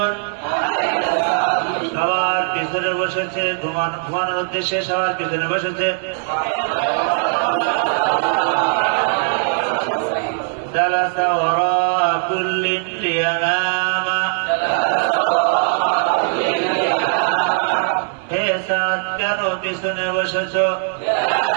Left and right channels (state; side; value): silent; left; 66 dB below the other